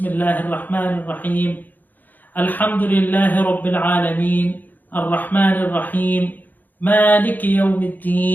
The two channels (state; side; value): late; right; 0.085 ms